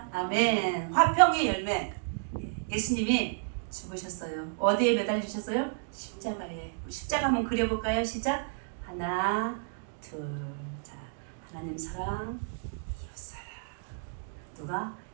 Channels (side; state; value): left; silent; digital silence